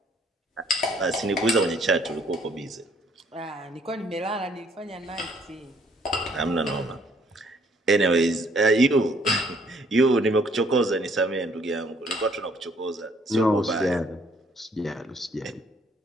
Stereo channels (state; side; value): normal; both; correlation 0.64